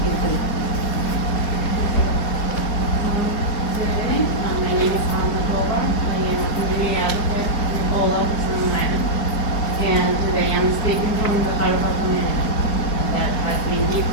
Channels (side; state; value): right; late; 4.3 ms